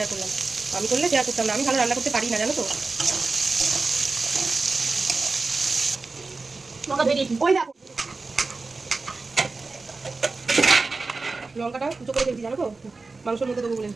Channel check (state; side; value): quieter; left; 3.9 dB